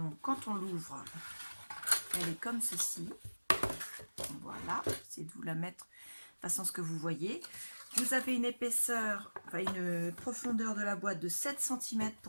quand on l'ouvre, elle est comme ceci. Voilà, c'est de vous la mettre de façon à ce que vous voyez. Vous avez une épaisseur, enfin une profondeur de la boîte de 7 cm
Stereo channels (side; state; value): both; inverted; correlation -1.00